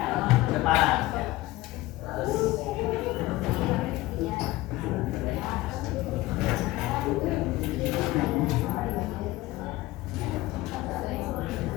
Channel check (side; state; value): right; quieter; 18.1 dB